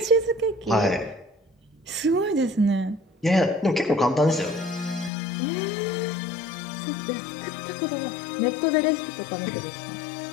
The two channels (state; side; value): drops out; right; at 5.1 s